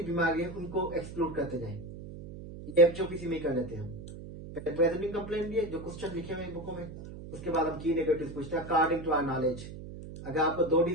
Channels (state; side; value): noise; right; hum, 12 dB below the sound